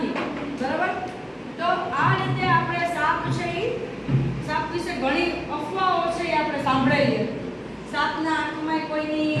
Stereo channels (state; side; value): identical; both; correlation 1.00